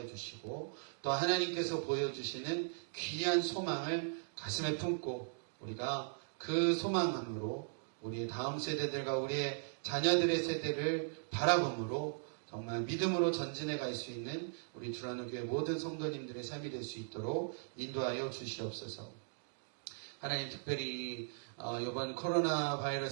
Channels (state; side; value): silent; left; digital silence